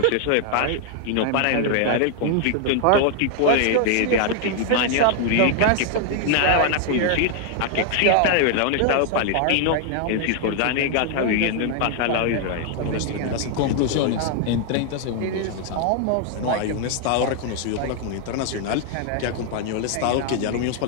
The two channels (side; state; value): both; different; correlation 0.00